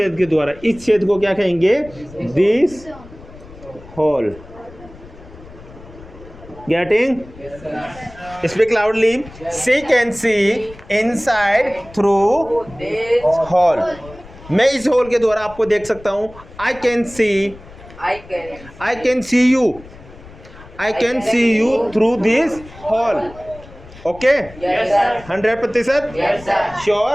के द्वारा। इस छेद को क्या कहेंगे? This hole. Getting? Speak loudly. She can see inside through hole. मैं इस होल के द्वारा आपको देख सकता हूं। I can see you, I can see you through this hole. Okay, 100%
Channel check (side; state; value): left; noise; rumble, 19 dB below the sound